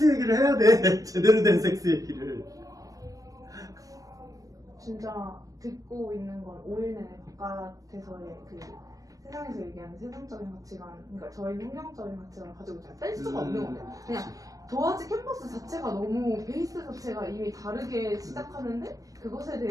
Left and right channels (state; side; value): late; left; 0.17 ms